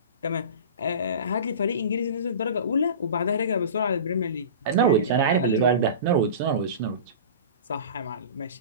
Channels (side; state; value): both; inverted; correlation -0.34